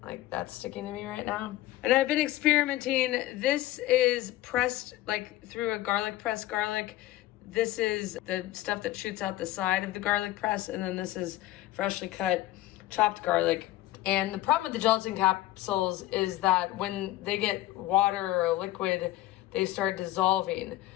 Like that's sticking to me right now. And I've been experimenting. This is pressed like through a garlic press garlic. This is the stuff that shoots out the side of the garlic press, and then this is freshly cut chopped garlic. And the problem with the gelatin capsules is that when they get water or liquid, they start dissolving.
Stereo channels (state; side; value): quieter; right; 15.7 dB